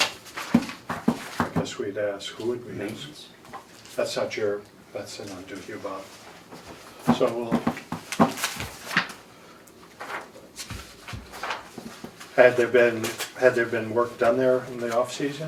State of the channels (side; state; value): both; identical; correlation 1.00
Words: I guess we'd ask, who would we ask? Maintenance. That's not to you, Bob. So we'll. Had there been work done there in the